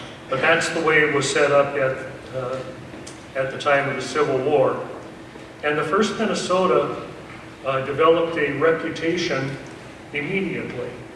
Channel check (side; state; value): both; identical; correlation 1.00